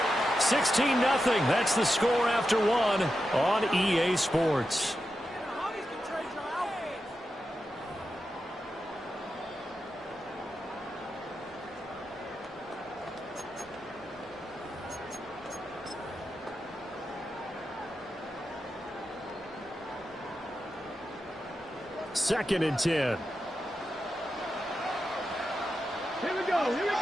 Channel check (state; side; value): normal; both; correlation 0.89